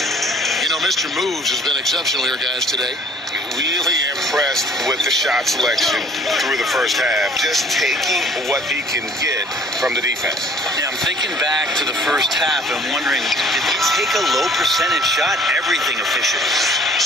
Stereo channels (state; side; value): normal; both; correlation 0.54